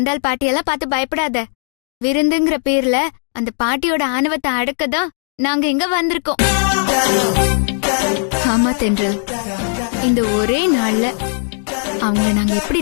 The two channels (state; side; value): silent; right; 57 dB below the other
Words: பாட்டியெல்லாம் பார்த்து பயப்படாத. விருந்துங்கிற பேர்ல அந்த பாட்டியோட ஆணவத்தை அடக்கதான் நாங்க இங்க வந்திருக்கோம். ஆமா தென்றல், இந்த ஒரே நாள்ல அவங்கள நாங்க எப்படி